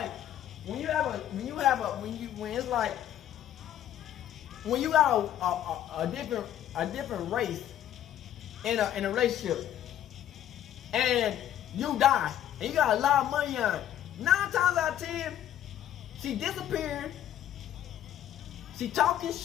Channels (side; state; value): right; quieter; 11.4 dB